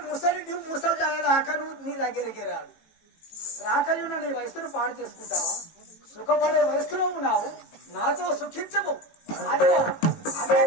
ముసలి రాకను నీ దగ్గరికి రాడు. రాకయున్న నీ వయస్సును పాడు చేసుకుంటావా? సుఖపడే వయస్సులో ఉన్నావు, నాతో సుఖించవు. అదిగో అదే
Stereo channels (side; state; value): right; late; 18 ms